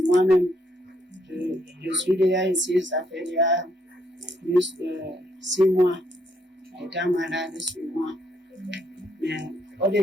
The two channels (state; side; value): normal; both; correlation 0.72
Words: moi-même. Je suis déjà ici, ça fait déjà plus de 6 mois, étant malade sur moi. Mais